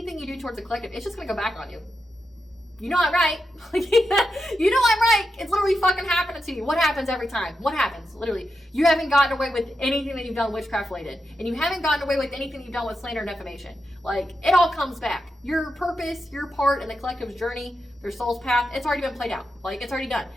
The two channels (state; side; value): normal; both; correlation 0.87